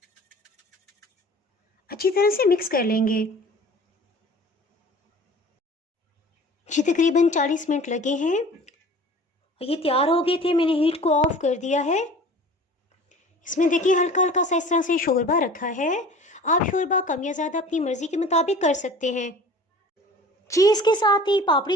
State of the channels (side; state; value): both; normal; correlation 0.44